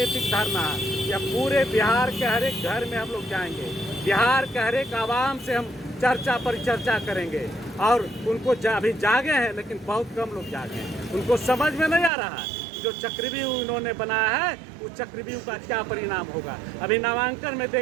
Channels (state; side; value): drops out; left; at 12.1 s